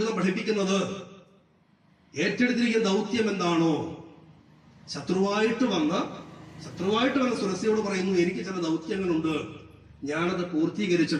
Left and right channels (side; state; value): both; identical; correlation 1.00